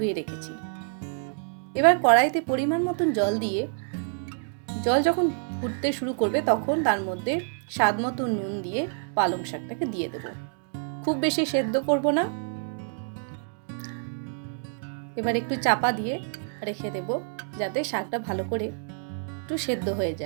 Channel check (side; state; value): left; silent; digital silence